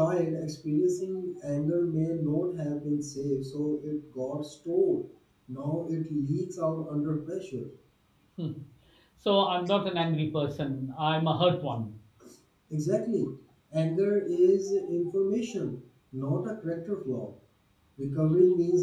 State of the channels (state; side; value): identical; both; correlation 1.00